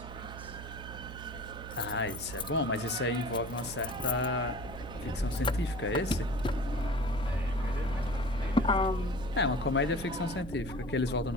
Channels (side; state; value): right; noise; hum, 11 dB below the sound